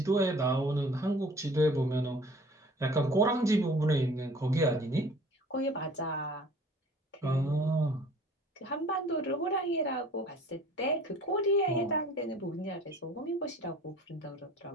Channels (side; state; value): both; normal; correlation 0.49